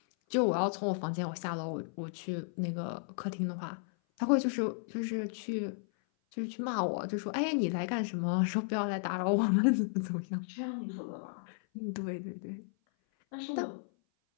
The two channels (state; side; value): silent; right; 55 dB below the other